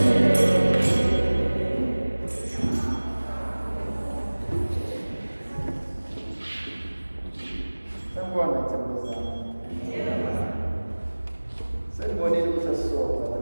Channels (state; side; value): inverted; both; correlation -1.00